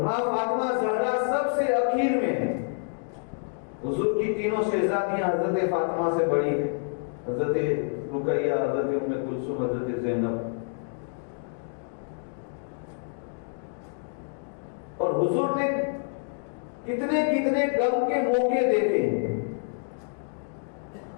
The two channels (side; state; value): right; silent; digital silence